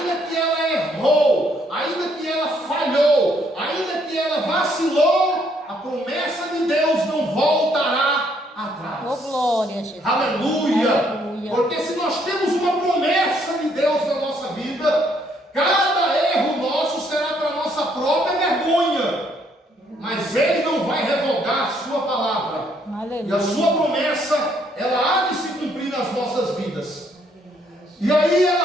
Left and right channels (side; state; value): both; normal; correlation 0.69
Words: que ela errou, ainda que ela falhou, ainda que ela vacilou, a promessa de Deus não voltará atrás. Oh, glória, Jesus. Aleluia. Aleluia. Porque se nós temos uma promessa de Deus na nossa vida, cada erro nosso será para a nossa própria vergonha. Mas Ele não vai revogar a sua palavra. Aleluia. E a sua promessa, ela há de se cumprir nas nossas vidas. E aí